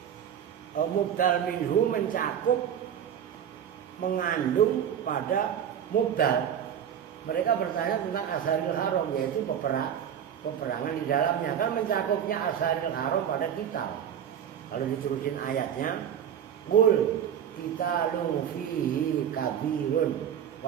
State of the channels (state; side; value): quieter; left; 9.0 dB